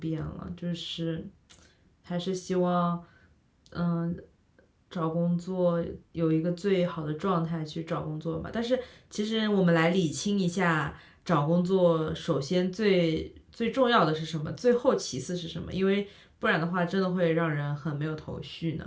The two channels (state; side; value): identical; both; correlation 1.00